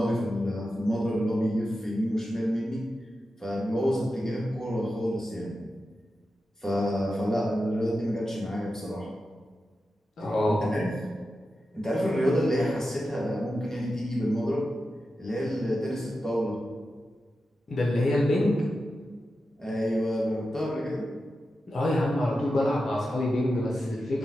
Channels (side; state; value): both; normal; correlation 0.91